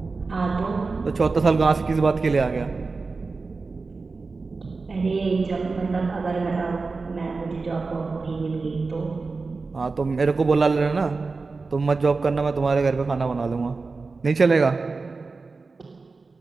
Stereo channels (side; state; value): left; quieter; 4.1 dB